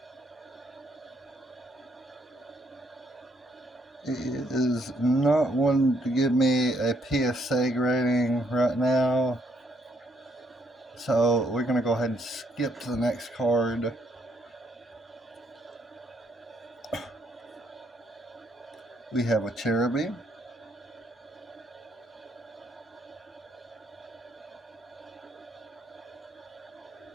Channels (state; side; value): normal; both; correlation 0.72